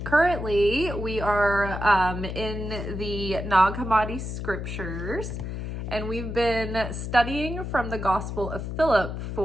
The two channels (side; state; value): left; noise; hum, 5 dB below the sound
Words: Currently, we are in the Nag Hammadi scriptures, and we've been studying from the Gospel of Philip